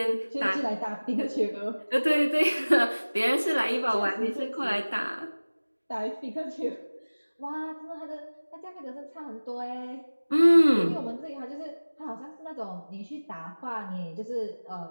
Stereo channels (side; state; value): both; inverted; correlation -1.00